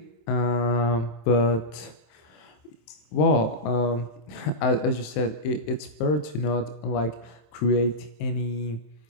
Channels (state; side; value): late; right; 27 ms